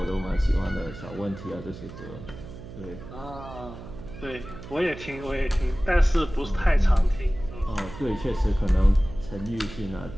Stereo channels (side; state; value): right; noise; hum, 13 dB below the sound